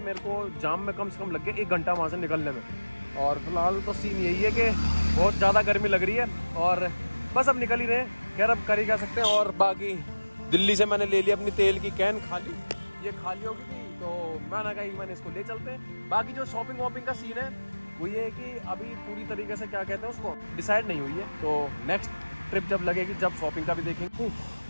मेरे को जाम में कम से कम लग गया 1 घंटा वहाँ से निकलने में। और फिलहाल तो सीन यही है कि बहुत ज़्यादा गर्मी लग रही है और बस अब निकल ही रहे हैं। खैर अब कर ही क्या सकते हैं। और बाकी दिल्ली से मैंने ले लिया अपनी तेल की कैन खाली, ये खाली होगी थी तो मैंने कहा मैंने इसको ले चलते हैं। बाकी जो शॉपिंग वॉपिंग का सीन है वो ये है कि अभी पूरी तरीके से क्या कहते हैं उसको डिसाइड नहीं हुई है। तो नेक्स्ट ट्रिप जब लगेगी जब शॉपिंग का भी देखेंगे।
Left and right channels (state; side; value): inverted; both; correlation -1.00